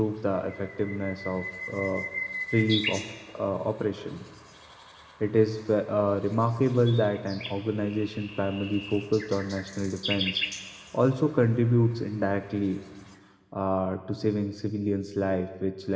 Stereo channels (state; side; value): identical; both; correlation 1.00